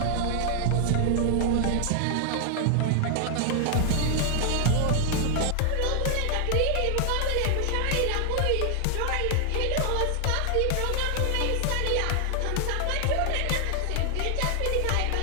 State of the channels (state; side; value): different; both; correlation 0.00